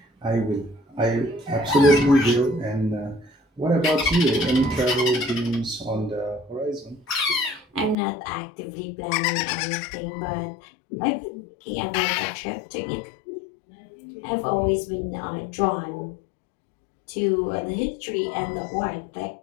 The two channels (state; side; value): drops out; right; at 8.0 s